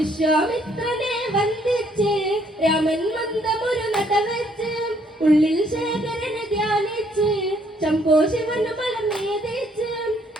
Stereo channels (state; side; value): normal; both; correlation 0.67